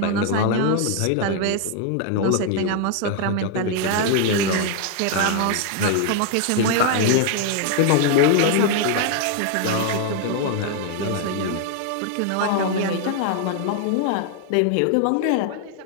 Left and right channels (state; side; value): different; both; correlation 0.00